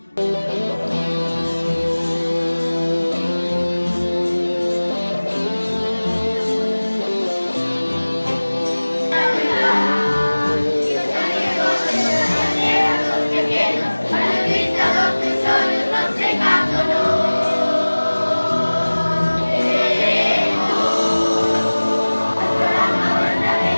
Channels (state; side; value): inverted; both; correlation -1.00